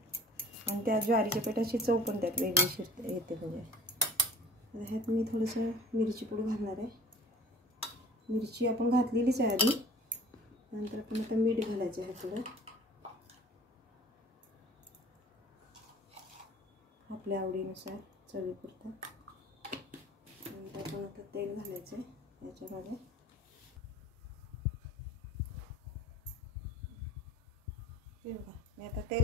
आणि त्या ज्वारीच्या पिठाची चव पण त्यात वेगळी येते. म्हणजे ह्यात मी थोडंसं मिरची पूड घालणार आहे. मिरची आपण घातलेलीच आहे आधी. नंतर आपण आता मीठ घालायचं आहे थोडं आपल्या आवडीनुसार चवीपुरतं. नंतर आपण आता तेल घालायचं आहे याच्यामध्ये. हे बघा मी आता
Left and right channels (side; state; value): both; normal; correlation 0.46